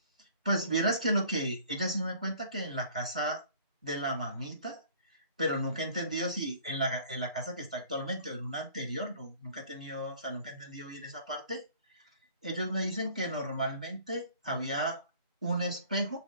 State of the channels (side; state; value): both; inverted; correlation -0.52